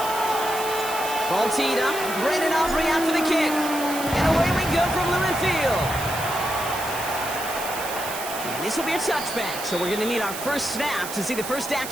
Ball teed up. Brandon Aubrey out for the kick. And away we go from Lumen Field. And this will be a touchback, so we're going to need our first snap to see the first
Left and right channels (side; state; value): right; noise; hiss, 9 dB below the sound